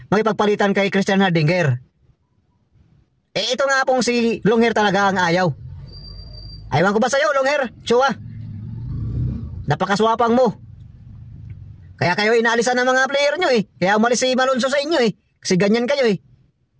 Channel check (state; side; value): identical; both; correlation 1.00